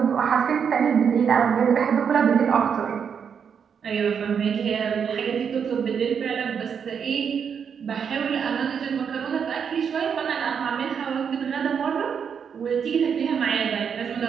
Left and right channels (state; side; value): quieter; left; 7.1 dB